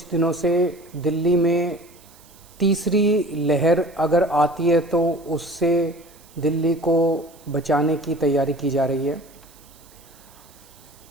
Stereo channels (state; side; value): noise; right; hiss, 26 dB below the sound